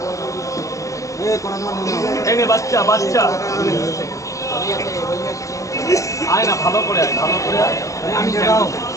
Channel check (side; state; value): right; late; 0.16 ms